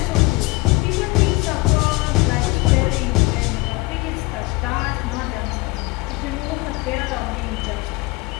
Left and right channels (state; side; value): quieter; right; 23.3 dB